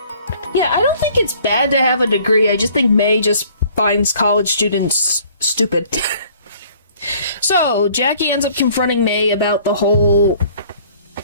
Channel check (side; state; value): both; inverted; correlation -0.56